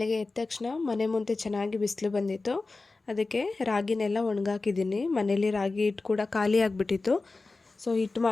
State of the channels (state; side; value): quieter; right; 3.6 dB